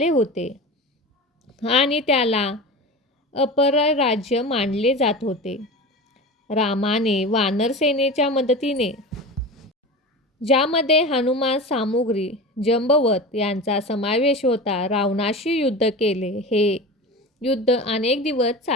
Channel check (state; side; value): normal; both; correlation 0.30